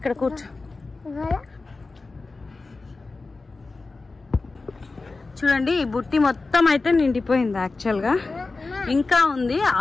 కూర్చో. చూడండి ఈ బుట్టి మొత్తం అయితే నిండిపోయింది. యాక్చువల్ గా ఇంకా ఉంది,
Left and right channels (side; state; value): right; quieter; 3.7 dB